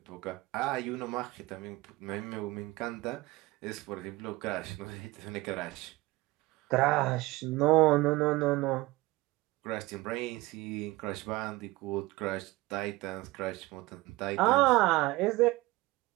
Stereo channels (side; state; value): left; quieter; 20.4 dB